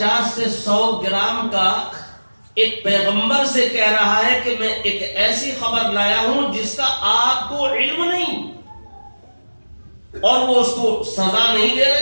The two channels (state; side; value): inverted; both; correlation -1.00